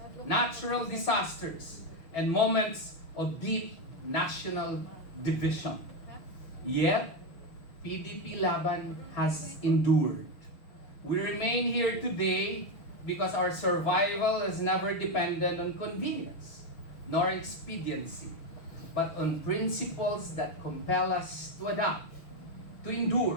natural disasters, and moments of deep national division. Yet, PDP Laban has endured. We remain here today because our survival has never depended on convenience nor expediency, but on principles that compel us to adapt, to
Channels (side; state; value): right; late; 6.3 ms